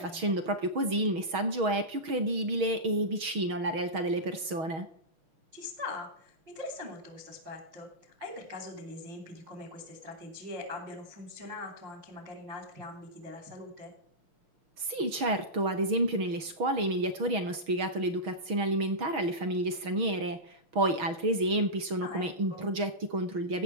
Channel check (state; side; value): late; left; 6.3 ms